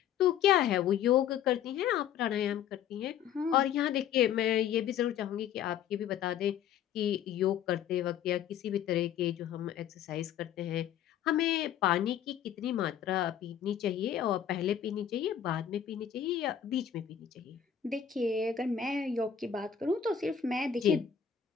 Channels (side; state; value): right; quieter; 9.1 dB